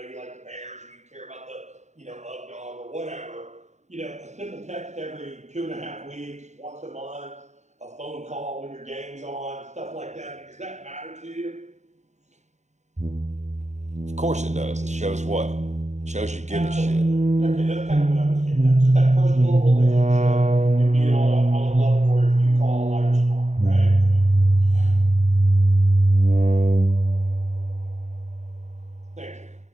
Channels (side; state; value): left; late; 0.34 ms